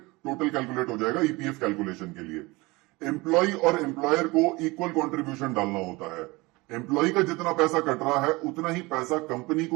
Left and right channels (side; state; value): left; quieter; 23.3 dB